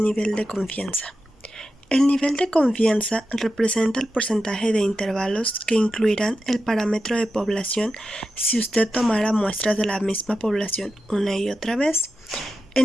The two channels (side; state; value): both; normal; correlation 0.90